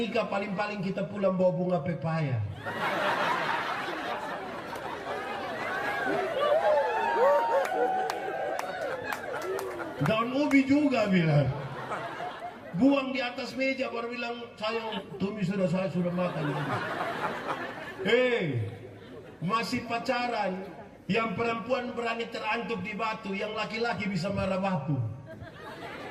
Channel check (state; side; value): identical; both; correlation 1.00